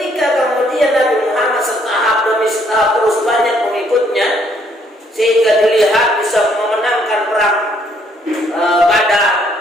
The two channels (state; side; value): normal; both; correlation 0.68